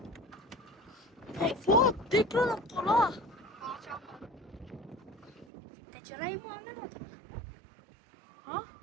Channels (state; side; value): drops out; left; at 5.5 s